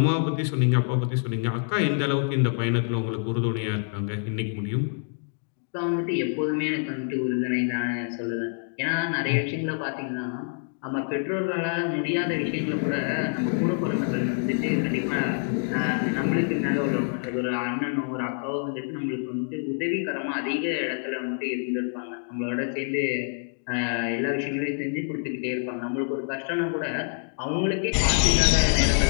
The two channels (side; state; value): right; silent; 61 dB below the other